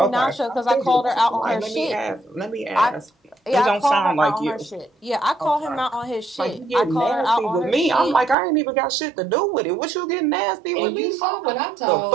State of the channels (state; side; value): drops out; left; at 8.3 s